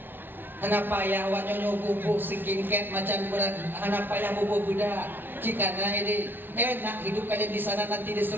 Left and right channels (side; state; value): left; late; 0.098 ms